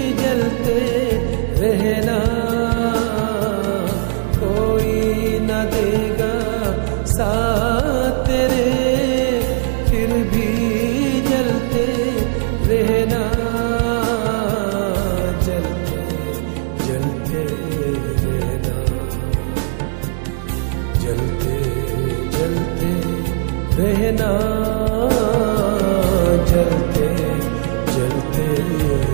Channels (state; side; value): silent; left; digital silence